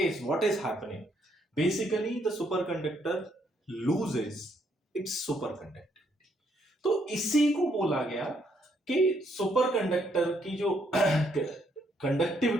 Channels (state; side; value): normal; both; correlation 0.72